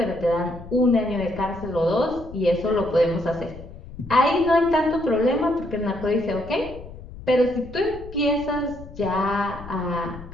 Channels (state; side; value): noise; left; rumble, 15 dB below the sound